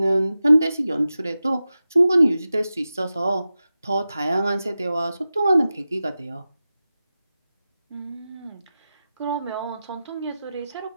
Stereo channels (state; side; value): inverted; both; correlation -0.93